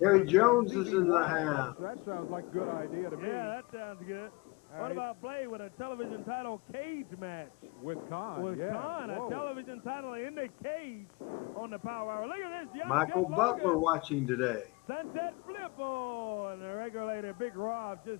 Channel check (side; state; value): right; quieter; 25.7 dB